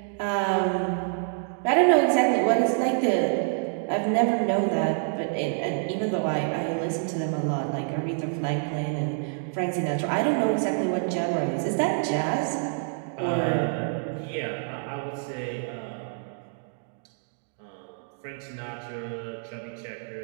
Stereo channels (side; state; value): left; silent; digital silence